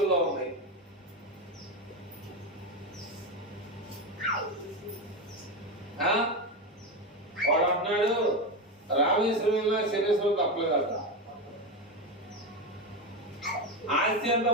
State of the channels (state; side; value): normal; both; correlation 0.14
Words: ఉంది. వాడు అంటున్నాడు రామేశ్వరంలో శనేశ్వరం తప్పలేదట. ఆస్తి అంతా